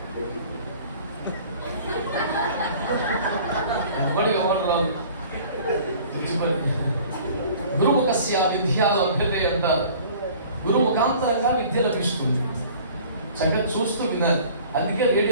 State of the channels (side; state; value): both; inverted; correlation -0.48